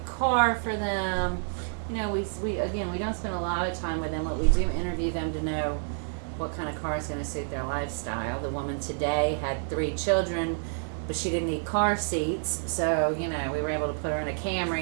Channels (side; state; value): left; silent; 59 dB below the other